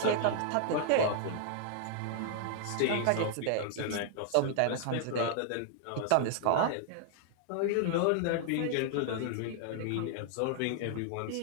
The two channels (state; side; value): different; both; correlation 0.00